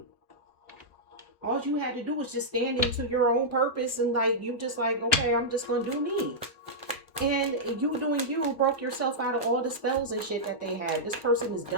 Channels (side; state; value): both; normal; correlation -0.10